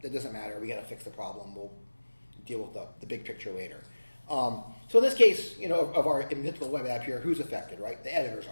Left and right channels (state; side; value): inverted; both; correlation -1.00